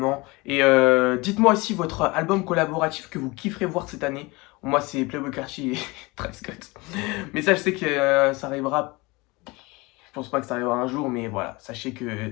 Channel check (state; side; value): quieter; right; 24.2 dB